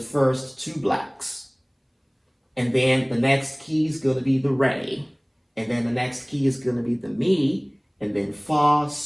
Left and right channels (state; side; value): identical; both; correlation 1.00